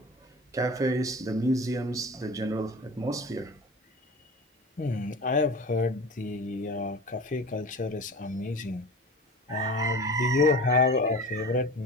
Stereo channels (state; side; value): normal; both; correlation 0.35